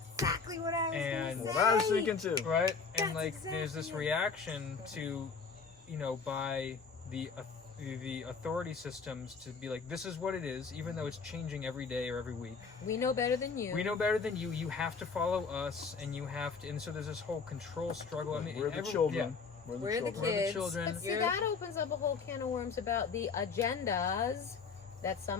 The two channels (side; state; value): right; quieter; 5.2 dB